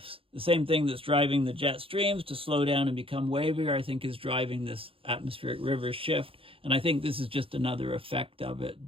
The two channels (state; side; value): late; left; 0.27 ms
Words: The same thing that's driving the jet streams to slow down and become wavier, I think, is driving this atmospheric river shift. And I think this is just another effect of it,